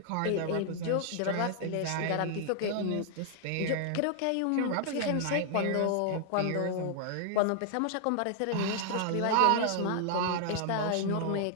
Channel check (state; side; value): different; both; correlation 0.00